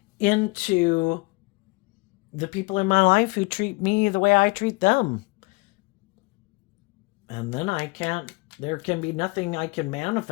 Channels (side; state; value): right; quieter; 25.9 dB